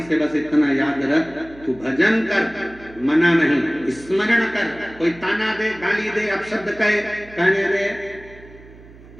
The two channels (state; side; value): noise; right; hum, 21 dB below the sound